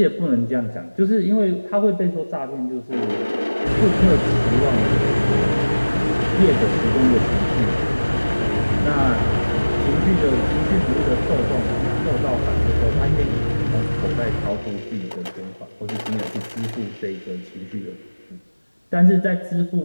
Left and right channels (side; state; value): both; inverted; correlation -1.00